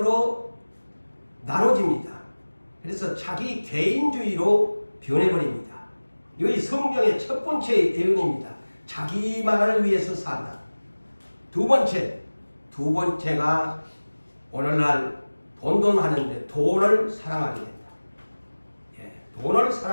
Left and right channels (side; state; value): both; inverted; correlation -1.00